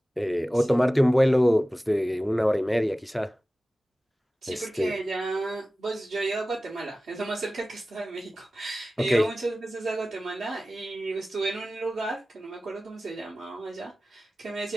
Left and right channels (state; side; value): normal; both; correlation 0.96